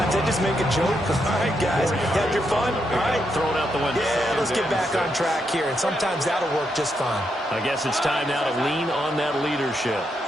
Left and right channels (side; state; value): both; normal; correlation 0.80